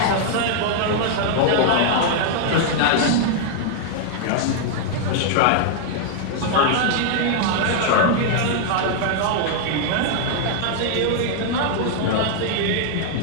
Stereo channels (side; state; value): both; different; correlation 0.00